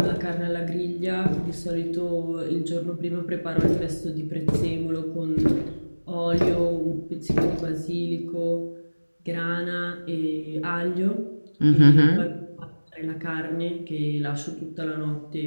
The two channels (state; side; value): inverted; both; correlation -1.00